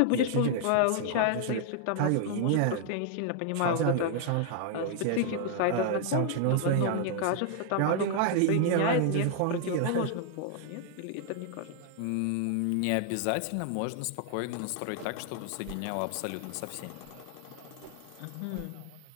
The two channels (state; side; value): different; both; correlation 0.00